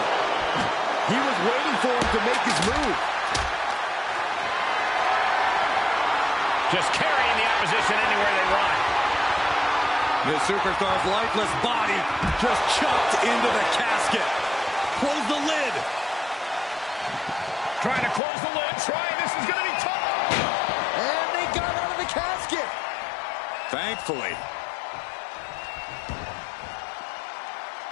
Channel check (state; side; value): drops out; right; at 18.2 s